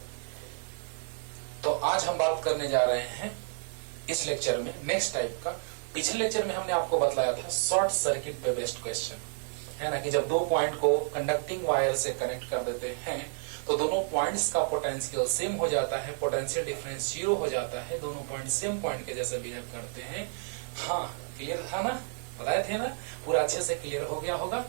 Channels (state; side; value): silent; left; 57 dB below the other